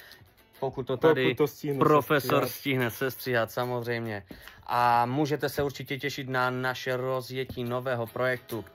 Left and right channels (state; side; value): identical; both; correlation 1.00